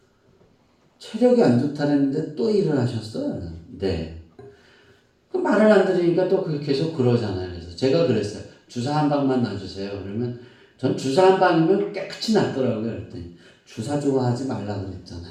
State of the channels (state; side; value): identical; both; correlation 1.00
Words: 체력이 안 좋다랬는데 또 일을 하셨어요. 네. 그 말을 안 들으니까 또 계속 그러잖아요. 그래서 제가 그랬어요. 주사 한 방만 놔주세요. 그러면 전 주사 한 방이면 깨끗이 낫더라고요. 그랬더니 주사 좋아하지 말라